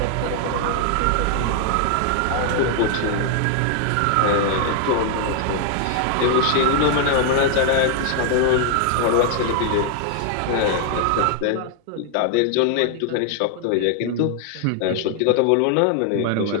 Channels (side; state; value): both; different; correlation 0.00